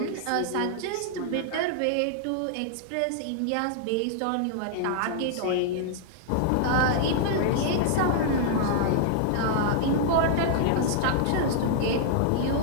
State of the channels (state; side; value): different; both; correlation -0.01